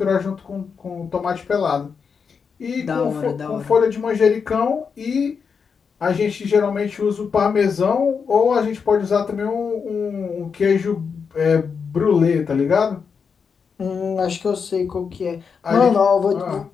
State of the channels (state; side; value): quieter; right; 6.0 dB